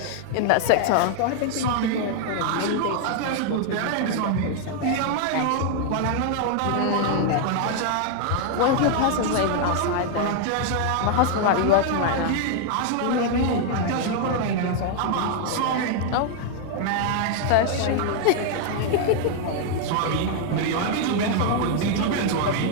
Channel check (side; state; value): both; different; correlation 0.00